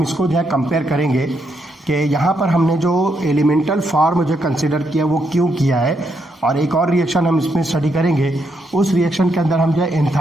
इसको जो है कंपेयर करेंगे कि यहाँ पर हमने जो एलिमेंटल फॉर्म जो कंसिडर किया वो क्यों किया है, और एक और रिएक्शन हम इसमें स्टडी करेंगे, उस रिएक्शन के अंदर हम जो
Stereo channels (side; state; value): both; normal; correlation 0.79